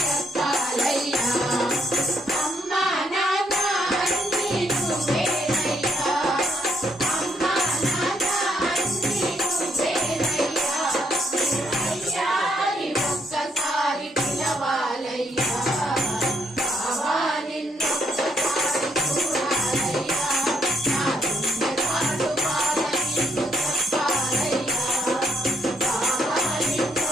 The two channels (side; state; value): both; normal; correlation 0.73